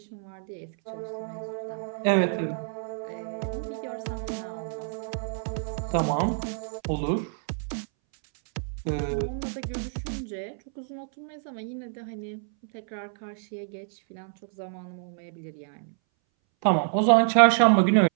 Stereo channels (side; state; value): left; silent; 60 dB below the other